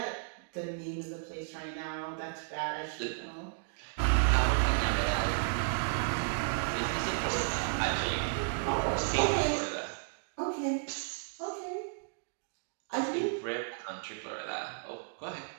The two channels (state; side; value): silent; left; digital silence